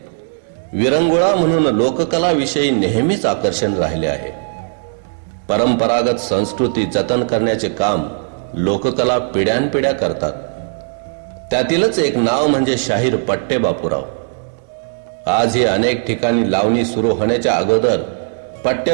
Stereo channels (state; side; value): silent; left; digital silence